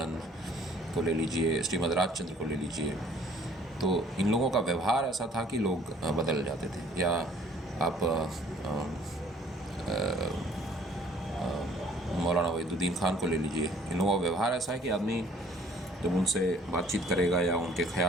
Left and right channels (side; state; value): both; normal; correlation 0.56